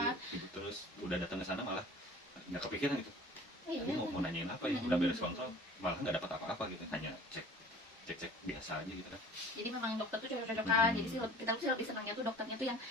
gitu. Terus udah datang ke sana malah nggak kepikiran gitu, Iya, tadi mau nanyain apa ya, udah beres kontrol malah nggak dapat apa-apa gitu, hanya cek biasa aja gitu kan. jadi memang dokter tuh cocok-cocokan. Jadi sih kita tuh sih lebih senangnya tuh dokternya tuh yang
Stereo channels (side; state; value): both; normal; correlation 0.45